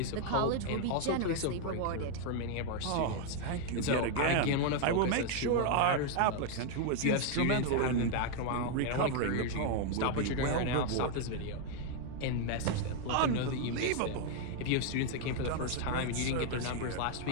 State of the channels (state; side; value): different; both; correlation 0.00